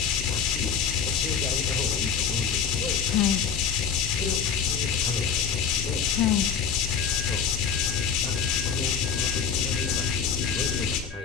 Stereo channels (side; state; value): right; quieter; 6.7 dB